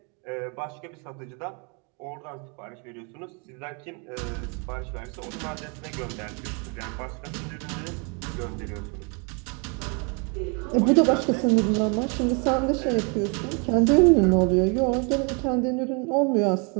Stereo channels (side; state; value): left; quieter; 34.4 dB